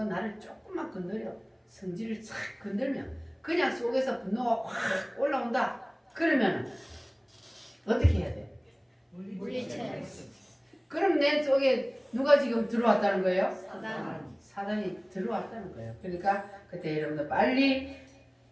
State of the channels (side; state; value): both; identical; correlation 1.00